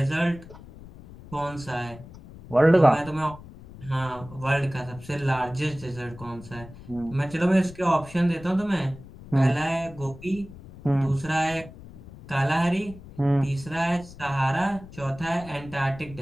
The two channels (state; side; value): noise; left; rumble, 17 dB below the sound